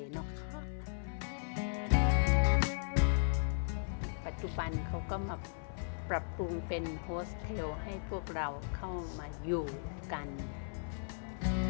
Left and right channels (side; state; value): right; silent; 53 dB below the other